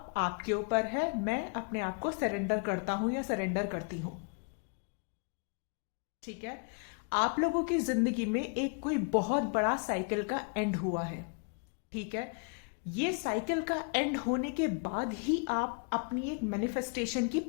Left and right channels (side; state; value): right; quieter; 37.3 dB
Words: आपके ऊपर है, मैं अपने आप को सरेंडर करता हूं या सरेंडर करती हूं। ठीक है, आप लोगों की जिंदगी में एक कोई बहुत बड़ा साइकिल का एंड हुआ है। ठीक है, ये साइकिल का एंड होने के बाद ही आप अपनी एक मैनिफेस्टेशन की